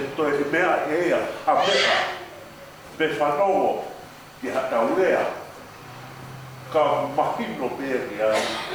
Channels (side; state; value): both; identical; correlation 1.00